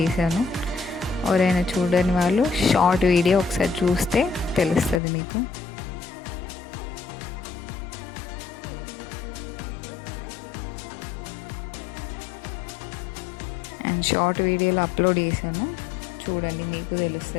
చేశాను. ఎవరైనా చూడని వాళ్ళు షార్ట్ వీడియో ఒకసారి చూస్తే తెలుస్తుంది మీకు. అండ్ షార్ట్ వీడియోలో అప్లోడ్ చేశాను, చూడండి మీకు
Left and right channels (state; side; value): drops out; right; at 5.0 s